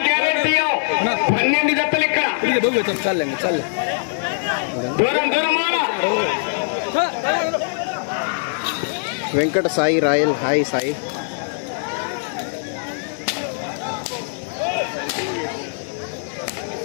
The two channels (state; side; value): silent; right; digital silence